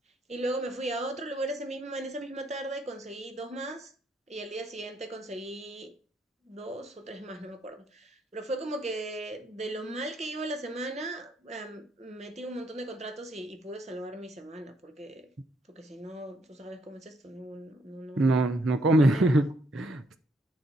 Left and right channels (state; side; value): normal; both; correlation 0.72